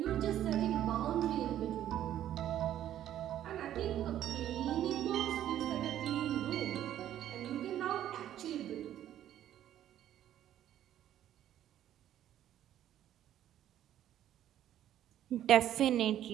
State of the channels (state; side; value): quieter; left; 11.6 dB